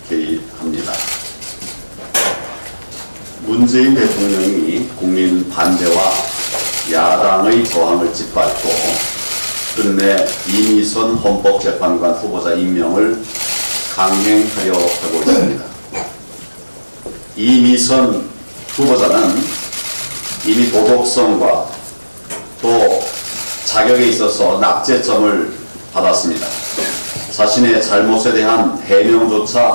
개의합니다. 문재인 대통령이 국민 반대와 야당의 저항을 짓밟고 끝내 이미선 헌법재판관 후보자 임명을 강행하려 하고 있습니다. 이미선 후보자는 이미 도덕성과 또 자격에 있어서 낙제점을 받았습니다. 자신의 잘못에 대한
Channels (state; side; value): inverted; both; correlation -1.00